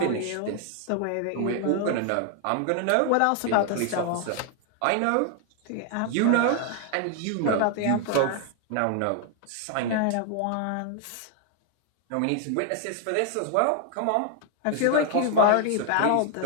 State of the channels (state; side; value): different; both; correlation 0.00